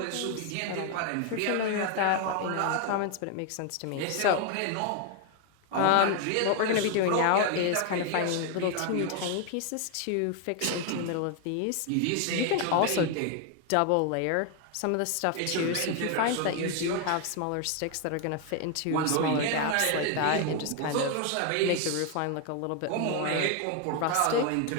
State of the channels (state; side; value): different; both; correlation 0.01